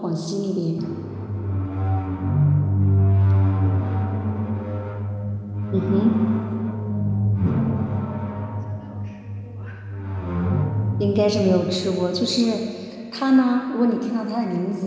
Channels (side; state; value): both; identical; correlation 1.00